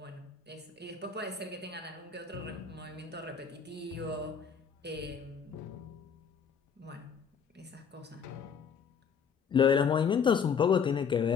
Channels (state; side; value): quieter; right; 6.6 dB